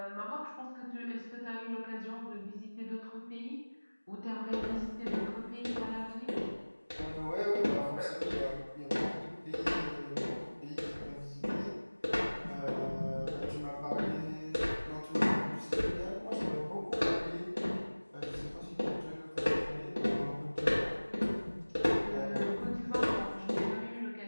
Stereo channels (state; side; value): inverted; both; correlation -1.00